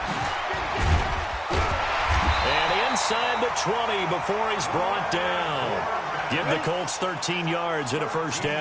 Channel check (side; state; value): both; identical; correlation 1.00